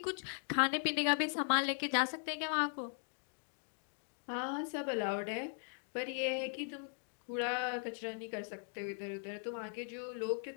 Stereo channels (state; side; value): silent; right; 52 dB below the other